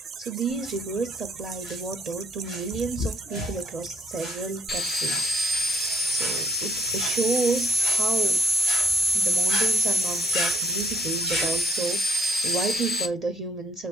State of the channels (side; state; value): both; normal; correlation 0.69